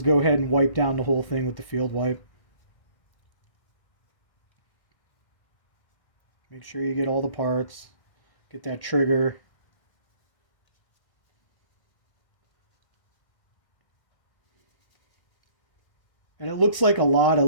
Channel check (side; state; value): right; late; 1.6 ms